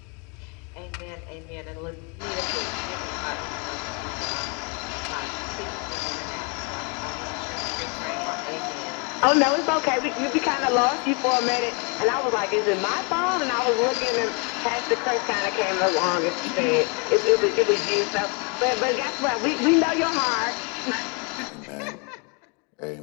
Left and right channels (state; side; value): quieter; right; 33.6 dB